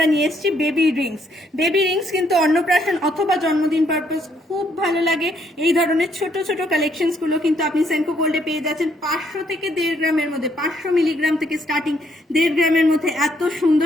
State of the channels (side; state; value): both; normal; correlation 0.70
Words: নিয়ে এসেছি বেবি রিংস। বেবি রিংস কিন্তু অন্নপ্রাশন অথবা জন্মদিন পারপাস খুব ভালো লাগে। এই ধরনের ছোট ছোট কালেকশনস গুলো কিন্তু আপনি সেনকো গোল্ডে পেয়ে যাচ্ছেন 500 থেকে 1.5 গ্রামের মধ্যে, 500 মিলিগ্রাম থেকে স্টার্টিং 1.5 গ্রামের মধ্যে এত